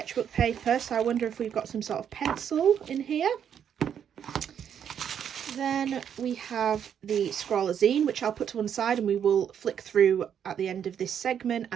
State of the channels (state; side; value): quieter; left; 8.6 dB